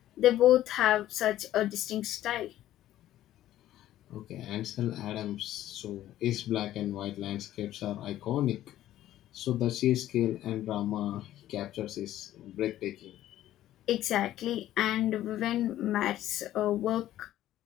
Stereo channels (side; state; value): right; quieter; 13.3 dB